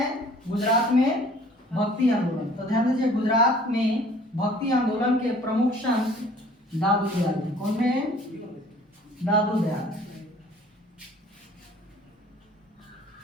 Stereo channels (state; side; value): normal; both; correlation 0.52